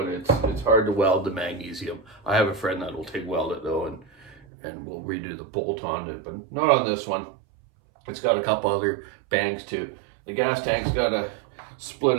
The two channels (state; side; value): drops out; left; at 4.5 s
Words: it's hard to weld the magnesium. I have a friend that will TIG weld it though, and we'll redo the bolt on it, but not on this one. It's got a couple other bangs too. The gas tank's got a split